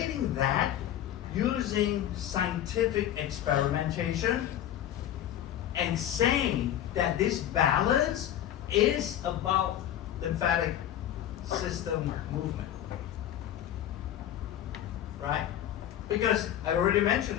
that using scientific experimentation and saying that this balance is about lymphatic system movement. Right? Because I already mentioned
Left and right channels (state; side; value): quieter; right; 11.4 dB